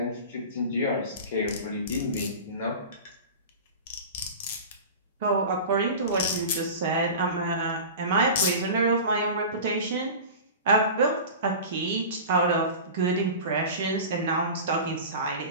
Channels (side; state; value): both; inverted; correlation -0.33